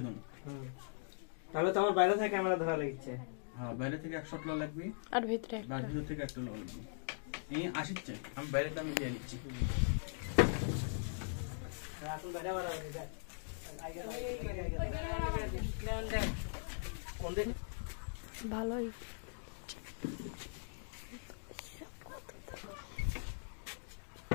দেবো তাহলে তো আমার বাইরে থেকে ক্যামেরা ধরা লাগছে হ্যাঁ বাইরে থেকে 100 লো লাগবি আর ভিতরে আর ভিতর থেকে 1 লো লাগবি এই আসছে আমি বাইরেটা আমি দিয়ে নিচ্ছি এখন বাইরে বাড়া হয়ে যায় কোন দে ভালোই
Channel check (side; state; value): right; silent; digital silence